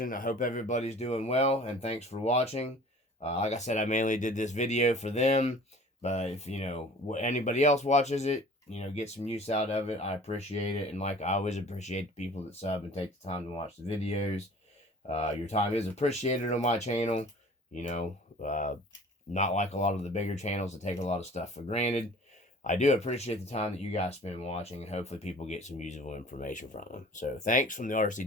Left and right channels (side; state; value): both; normal; correlation 0.46